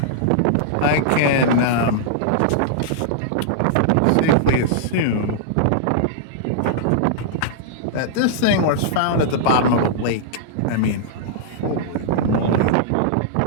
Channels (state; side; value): different; both; correlation -0.01